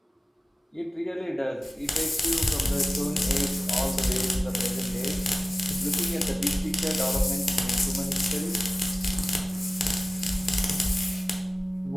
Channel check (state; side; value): normal; both; correlation 0.97